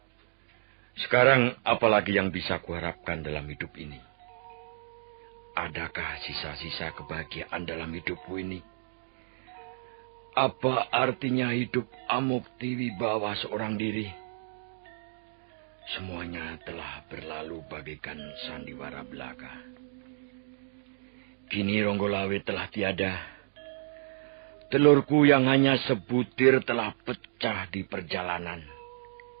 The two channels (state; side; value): silent; left; digital silence